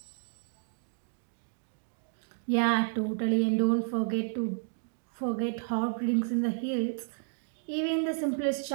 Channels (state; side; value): silent; left; digital silence